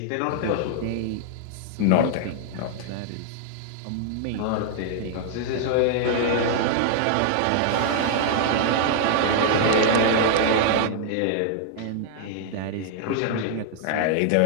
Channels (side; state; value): both; different; correlation -0.01